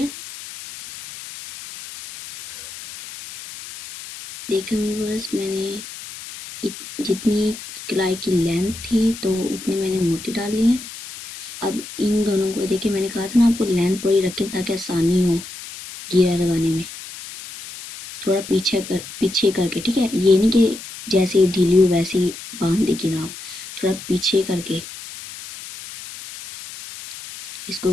देखा व्यूअर्स, मैंने जितनी कलाई की लेंथ थी तो उतने मैंने मोती डाल लिए हैं। अब इन दोनों को देखिए, मैंने कहा था ना आपको लेंथ बड़ी रखें ताकि आसानी हो गिरा लगाने में। थोड़ा पीछे करके, ठीक है, ये नहीं कि जैसे ढीली हो वैसे ही बांध देगी ना आप, थोड़ा पीछे करके इसको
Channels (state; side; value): noise; left; hiss, 13 dB below the sound